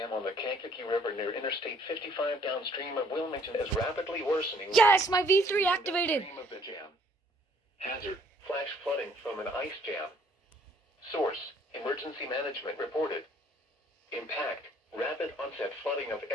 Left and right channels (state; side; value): normal; both; correlation 0.62